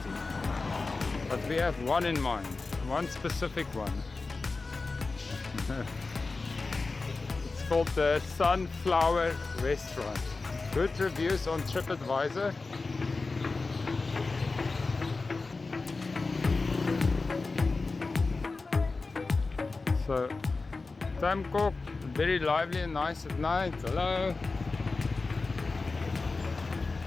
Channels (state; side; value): quieter; right; 3.8 dB